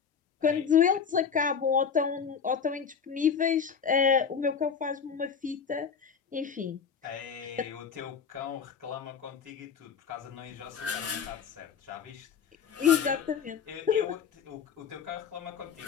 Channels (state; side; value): quieter; right; 6.7 dB